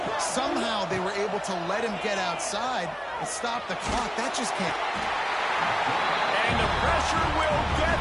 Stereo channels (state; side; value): identical; both; correlation 1.00